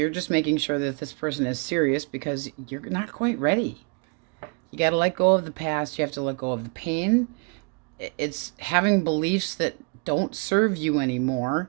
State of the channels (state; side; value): quieter; left; 33.9 dB